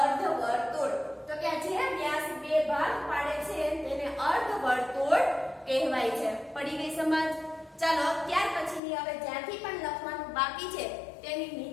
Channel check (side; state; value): right; drops out; at 8.8 s